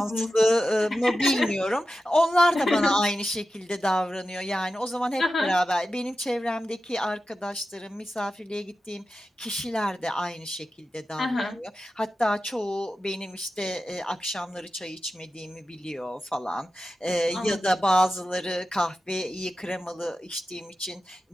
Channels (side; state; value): both; normal; correlation 0.92